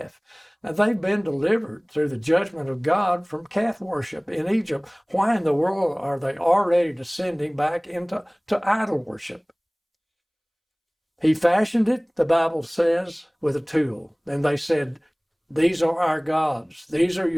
Now, they've been delivered through the judgment of God from calf worship in Egypt. Why in the world are they already descending back into idol worship? He fashioned it, the Bible says, with a tool. And they said, "These are our gods. These are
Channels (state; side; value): identical; both; correlation 1.00